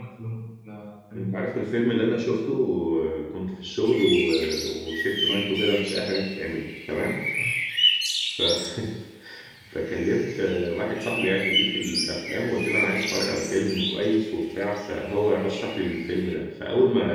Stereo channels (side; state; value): both; identical; correlation 1.00